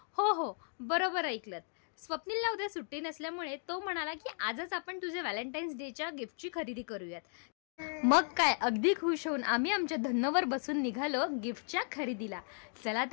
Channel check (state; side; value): silent; right; 54 dB below the other